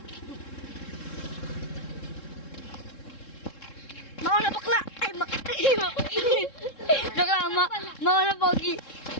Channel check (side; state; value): right; late; 3.7 ms